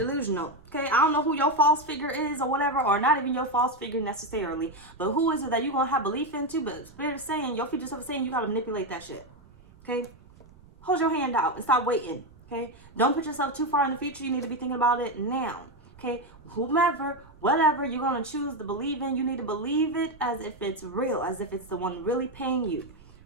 Okay? I don't know who your false figure is or whatever. Or not even your false figure necessarily. But who is it that you're going to have belief into? But Spirit is saying, your future self is saying you got to manipulate that shit. Okay? Hold your hand out and stop waiting. Okay? Don't put yourself too far in the future. You need to be thinking about it now. Okay? Whomever, whatever you're going to choose to believe in, you need to believe it as if it's real, as if it's the one really paying you,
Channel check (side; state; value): right; noise; rumble, 24 dB below the sound